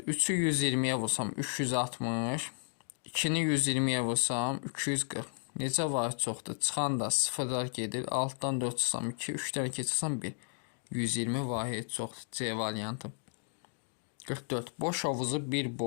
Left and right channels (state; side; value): silent; right; 56 dB below the other